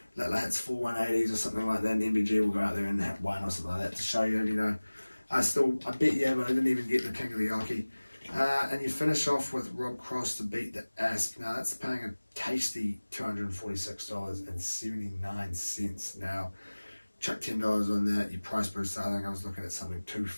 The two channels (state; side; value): inverted; both; correlation -1.00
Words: Littler hits 4 180s or something like that, and MVG will go out there and hit 1 or something like that to show you, you know, I bet you, but I didn't even get the King of the Oki. And you finish off with Rob Cross to beat the Asp. Now that's paying a tasty $246.79. Now, chuck $10 on that, your price booster, I think I was looking at something